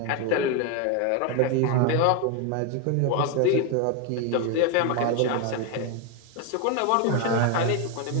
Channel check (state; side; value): different; both; correlation 0.01